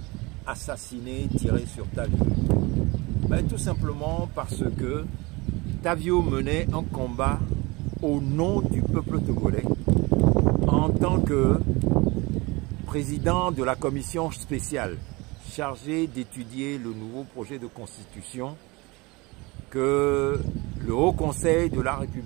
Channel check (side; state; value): left; quieter; 24.4 dB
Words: assassinés, tirés sur Tavio? Tout simplement parce que Tavio menait un combat au nom du peuple togolais en tant que président de la commission spéciale chargée d'étudier le nouveau projet de constitution que le Haut Conseil de la